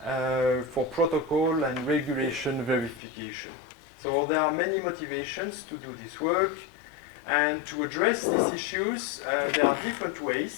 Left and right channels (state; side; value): drops out; right; at 3.0 s